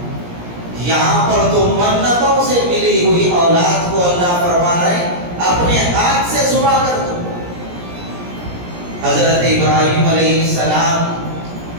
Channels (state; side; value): late; left; 17 ms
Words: یہاں پر تو منتوں سے ملی ہوئی اولاد کو اللہ فرما رہے اپنے ہاتھ سے ذبح کر دو۔ حضرت ابراہیم علیہ السلام